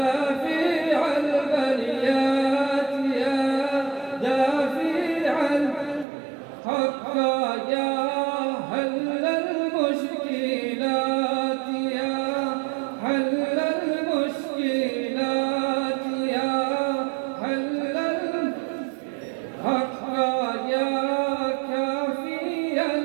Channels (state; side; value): drops out; left; at 6.1 s